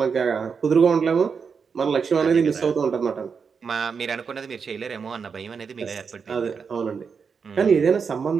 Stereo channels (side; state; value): left; quieter; 5.9 dB